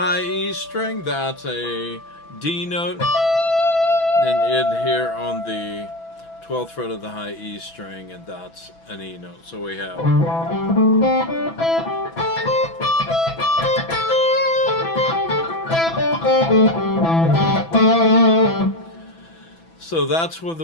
E string, that's a D note, then in here on the 12th fret of the high E string, and that's an E note. So we have so that's what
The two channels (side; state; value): right; late; 6.0 ms